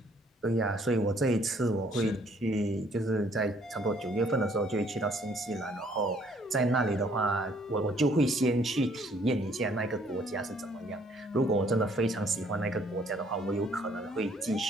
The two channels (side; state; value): both; normal; correlation 0.63